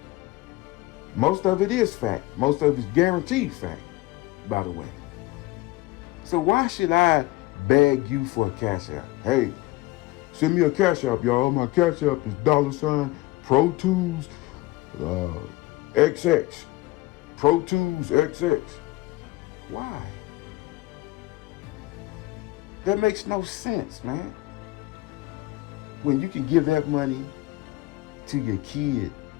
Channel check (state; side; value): quieter; right; 19.4 dB